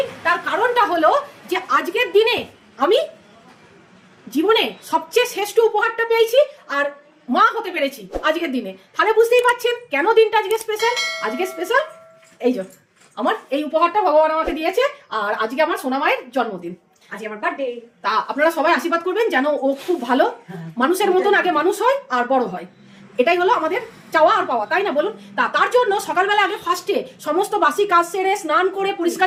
তার কারণটা হলো যে আজকের দিনে আমি জীবনে সবচেয়ে শ্রেষ্ঠ উপহারটা পেয়েছি আর মা হতে পেরেছি আজকের দিনে। তাহলে বুঝতেই পারছেন কেন দিনটা আজকে স্পেশাল। আজকে স্পেশাল এই যে আমার এই উপহারটা ভগবান আমাকে দিয়েছে। আর আজকে আমার সোনা মায়ের জন্মদিন, আজকে আমার বার্থডে। তা আপনারা সবাই আশীর্বাদ করবেন যেন ও খুব ভালো মানুষের মতন আগে মানুষ হয় আর বড় হয়। এটাই হলো আমাদের চাওয়া আর পাওয়া, তাই না বলুন? তার জন্য সকালবেলা আগে ফার্স্টে সমস্ত বাসি কাজ সেরে স্নান করে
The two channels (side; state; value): both; identical; correlation 1.00